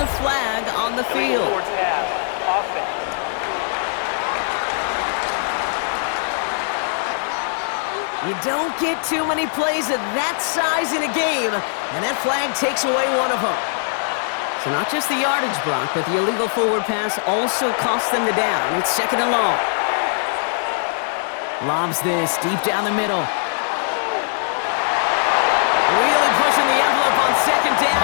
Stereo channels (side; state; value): right; silent; digital silence